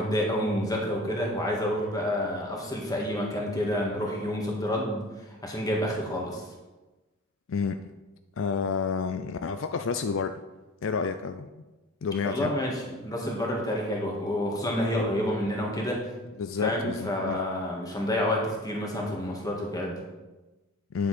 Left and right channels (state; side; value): normal; both; correlation 0.40